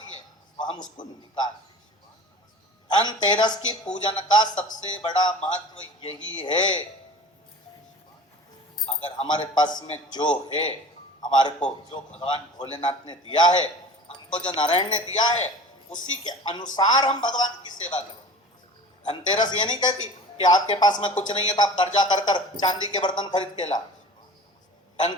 है, वो हम उसको निकाल। धनतेरस की पूजन का सबसे बड़ा महत्व यही है। अगर हमारे पास में जो है, हमारे को जो भगवान भोलेनाथ ने दिया है, हमको जो नारायण ने दिया है, उसी के अनुसार हम भगवान की सेवा करें। धनतेरस ये नहीं कहती कि आपके पास में कुछ नहीं है तो आप कर्जा कर कर चांदी के बर्तन खरीद के ला।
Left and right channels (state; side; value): normal; both; correlation 0.40